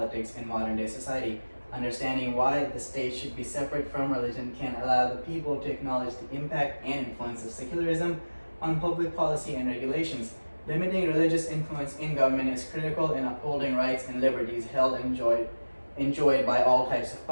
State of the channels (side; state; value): both; inverted; correlation -1.00